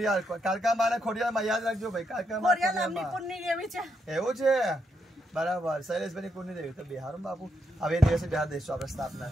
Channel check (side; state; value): both; normal; correlation 0.80